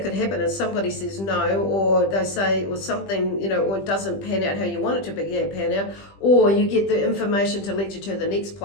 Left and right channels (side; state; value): right; late; 20 ms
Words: could happen is somebody says no, or they say, or something, or it doesn't pan out how you want it to pan out, or you get the information to lead you to the next